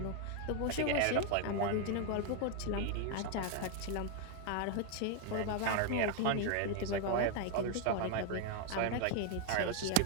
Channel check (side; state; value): both; different; correlation 0.01